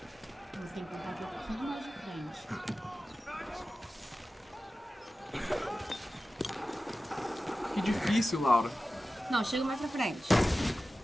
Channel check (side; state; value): both; normal; correlation 0.95